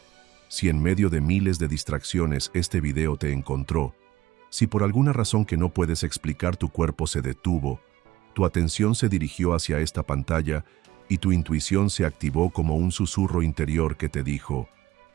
si en medio de miles de distracciones este video te encontró, si por alguna razón que no puedes explicar tu cuerpo se detuvo, tu atención se dirigió hacia esta pantalla y tu intuición se activó como un susurro interior que te dijo,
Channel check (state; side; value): quieter; left; 16.2 dB